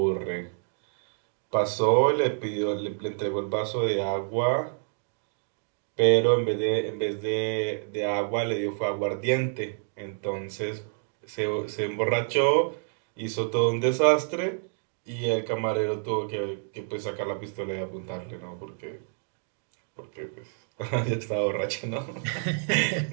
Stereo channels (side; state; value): left; silent; 59 dB below the other